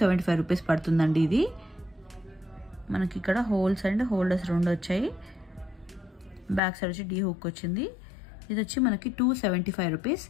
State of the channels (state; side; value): drops out; right; at 6.6 s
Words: రూపీస్ పడుతుందండి. ఇది మనకి ఇక్కడ హోల్స్ అండ్ హోల్డర్స్ 2 వచ్చాయి. బ్యాక్ సైడ్ వచ్చి డీ హుక్ వచ్చింది. ఇది వచ్చి మనకి 275 రూపీస్.